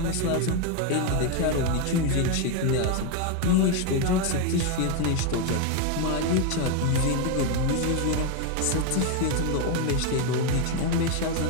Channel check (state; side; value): different; both; correlation 0.02